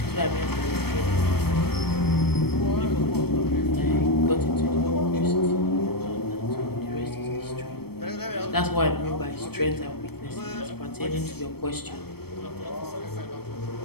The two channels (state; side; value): late; right; 0.96 ms